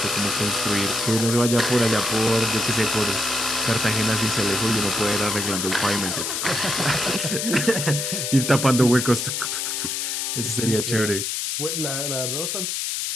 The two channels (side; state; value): left; noise; hiss, 2 dB below the sound